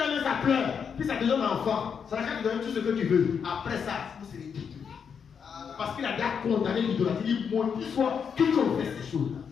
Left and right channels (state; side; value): quieter; right; 6.8 dB